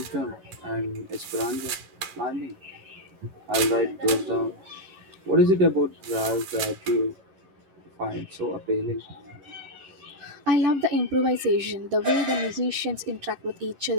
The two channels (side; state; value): left; late; 11 ms